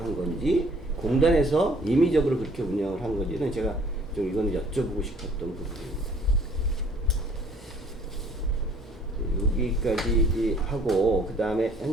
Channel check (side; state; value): both; normal; correlation 0.57